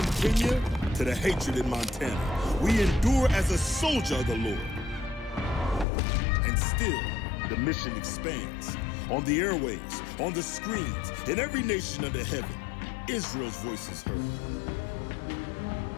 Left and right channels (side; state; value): right; drops out; at 5.9 s